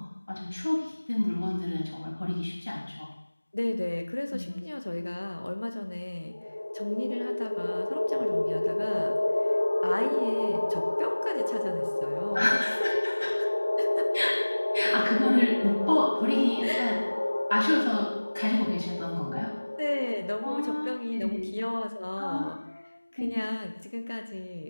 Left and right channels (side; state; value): both; inverted; correlation -1.00